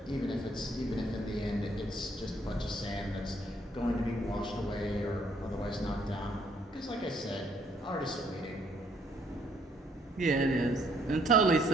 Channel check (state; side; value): normal; both; correlation 0.67